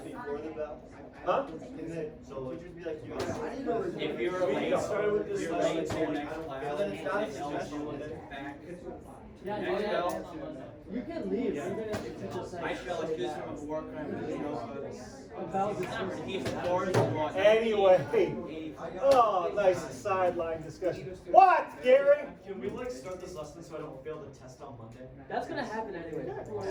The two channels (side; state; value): both; identical; correlation 1.00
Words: the bell? Huh? Can the teachers be like, you If you're We late, started with this you're lesson, late to your I next don't- class. then it's not a and they'll suggestion, do then it back. Yeah, Next yeah, bell. you can leave, even if the teacher says. I feel like this from work, you know, he's Anyway, oh, nice sideline discussion. What, Gary? Can we like start this lesson so I don't fail the test on Monday? That's gonna happen anyway.